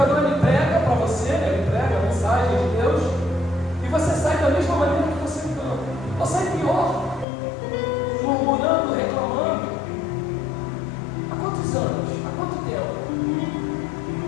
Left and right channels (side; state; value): right; drops out; at 7.2 s